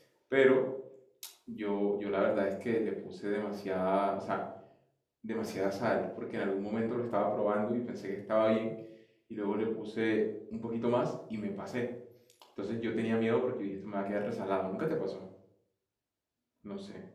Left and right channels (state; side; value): identical; both; correlation 1.00